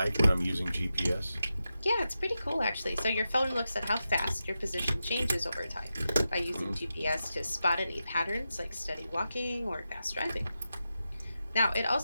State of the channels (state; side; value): inverted; both; correlation -0.90